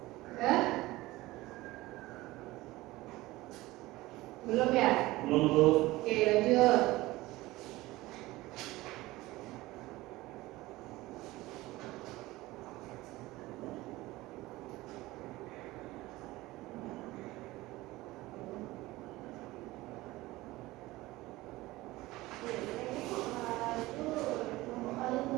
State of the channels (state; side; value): quieter; left; 18.9 dB